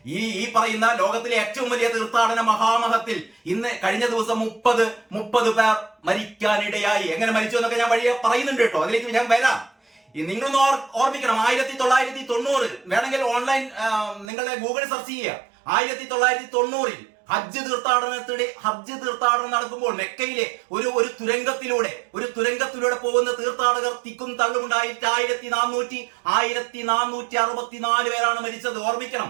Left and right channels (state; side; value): drops out; left; at 14.2 s